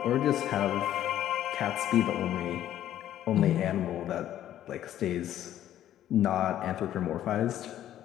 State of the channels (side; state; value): right; quieter; 11.9 dB